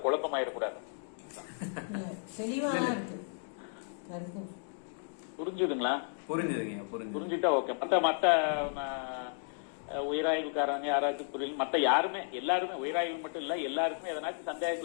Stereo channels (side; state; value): right; silent; digital silence